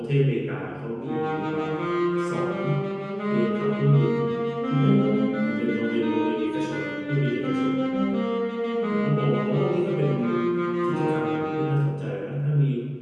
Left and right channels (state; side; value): identical; both; correlation 1.00